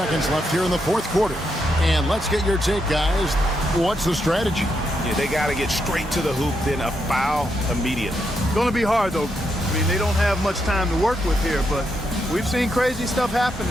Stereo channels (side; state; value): both; normal; correlation 0.81